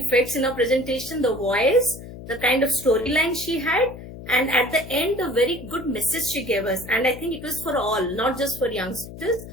in her presentation, the voice, the kind of storyline she had, and at the end, a very good message she gave us. And I think it was for all, not just for youngsters,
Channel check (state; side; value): noise; left; hum, 13 dB below the sound